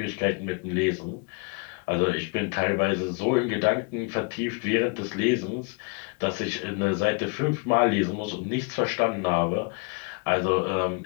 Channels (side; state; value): right; quieter; 33.7 dB